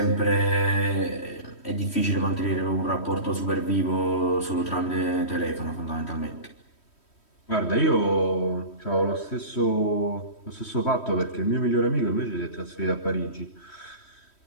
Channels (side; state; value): right; late; 3.1 ms